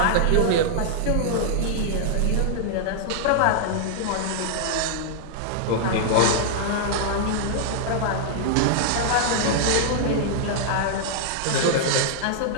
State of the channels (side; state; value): both; different; correlation -0.01